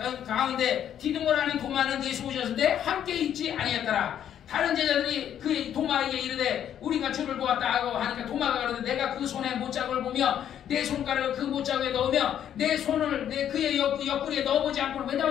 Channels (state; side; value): quieter; right; 10.0 dB